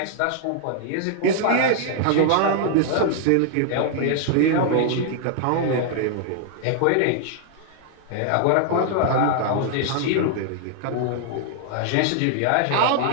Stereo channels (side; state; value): both; different; correlation 0.00